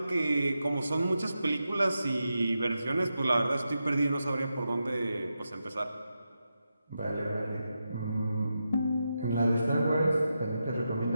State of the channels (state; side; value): inverted; both; correlation -0.88